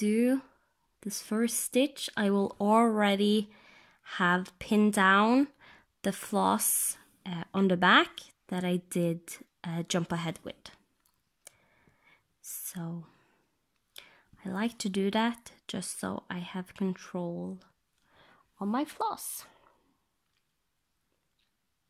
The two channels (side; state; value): both; identical; correlation 1.00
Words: this first stitch, I will already have pinned down the floss on the back that I did jump ahead with. So I like to do that just so I have control on my floss.